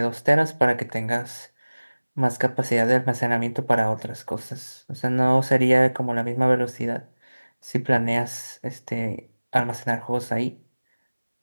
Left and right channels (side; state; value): both; inverted; correlation -1.00